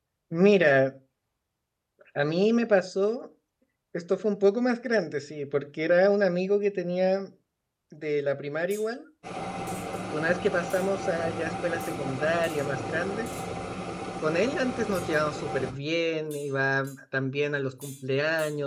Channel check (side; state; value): both; identical; correlation 1.00